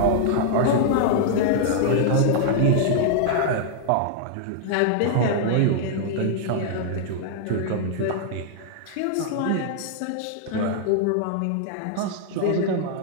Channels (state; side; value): different; both; correlation -0.01